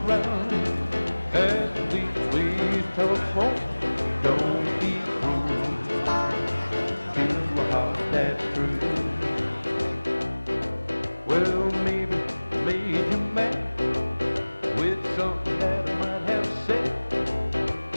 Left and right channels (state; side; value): inverted; both; correlation -1.00